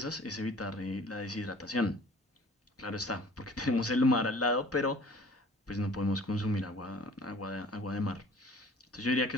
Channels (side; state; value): both; normal; correlation 0.49